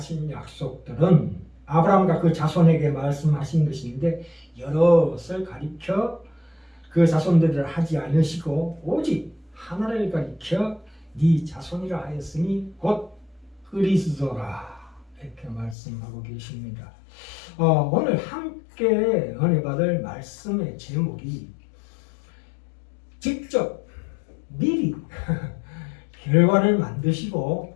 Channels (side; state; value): right; drops out; at 15.8 s